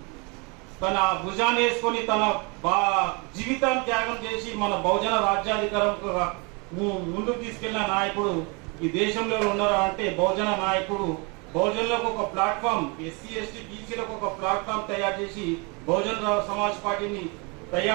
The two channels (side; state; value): left; quieter; 30.9 dB